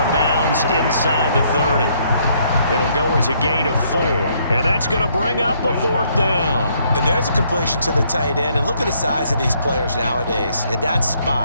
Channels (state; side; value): inverted; both; correlation -0.69